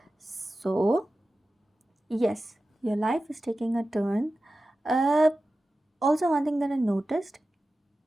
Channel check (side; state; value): both; normal; correlation 0.94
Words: So, yes, your life is taking a turn. Also, one thing that I noticed,